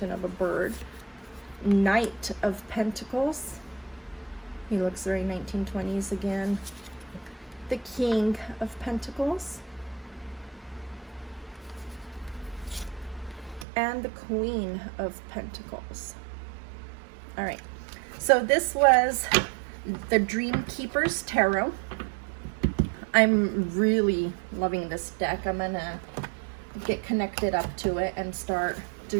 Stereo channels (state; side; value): drops out; left; at 13.7 s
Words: of a bird. Knight of Pentacles. He looks very 1920s again. The King of Pentacles. And the Queen of Pentacles. All right. So this was the Dreamkeepers Tarot. I'm really loving this deck. I'm gonna get connected up to it and start